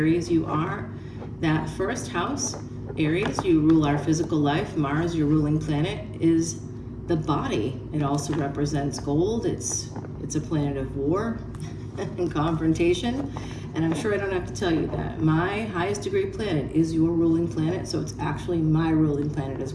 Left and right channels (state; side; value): identical; both; correlation 1.00